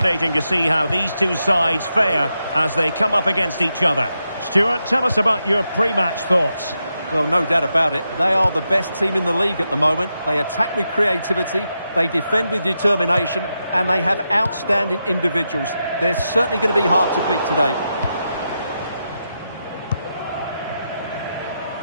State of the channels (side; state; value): both; inverted; correlation -0.86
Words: to see how these two sides fare as they come up against each other. Stuart, tell us about your pre-match thoughts. Well, no doubt about it. They are the best team in the league at the moment. They attack with creativity, they defend with determination, and they have outstanding individuals. They're certainly going to be hard to beat today.